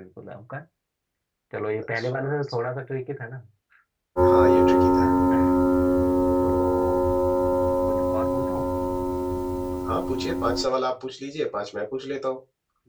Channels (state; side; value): identical; both; correlation 1.00